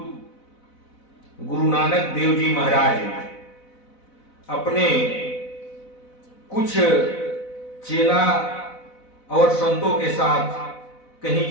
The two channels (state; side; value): late; right; 4.0 ms